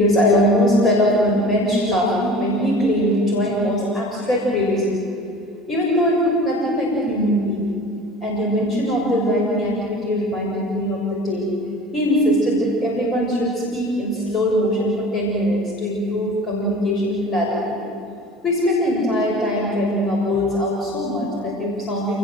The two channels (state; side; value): normal; both; correlation 0.41